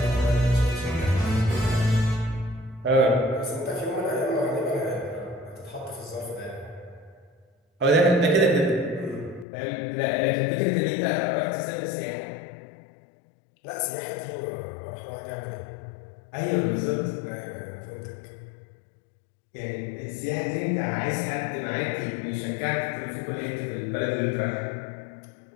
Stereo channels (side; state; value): right; drops out; at 9.5 s